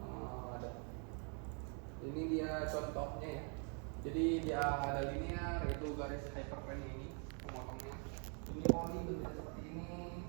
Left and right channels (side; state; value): left; quieter; 39.2 dB